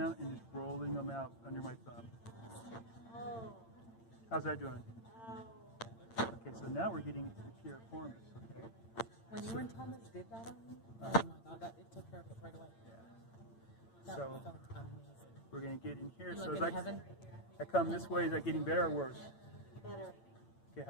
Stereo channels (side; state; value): right; late; 8.8 ms